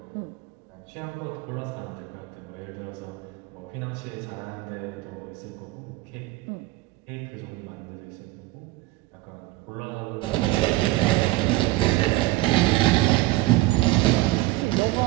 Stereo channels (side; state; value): left; quieter; 18.8 dB